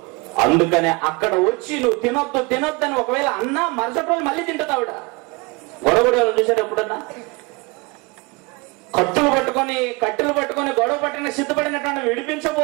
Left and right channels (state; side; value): quieter; left; 26.9 dB